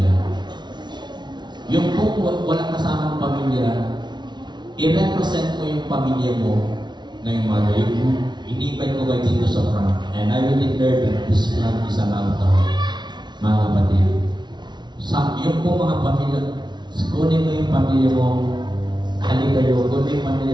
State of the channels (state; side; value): late; left; 0.21 ms